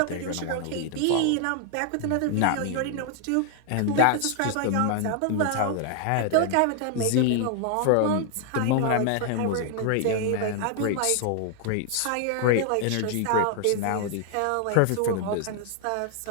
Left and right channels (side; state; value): both; different; correlation 0.00